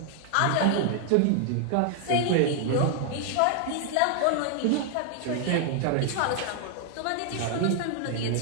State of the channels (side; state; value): both; different; correlation 0.00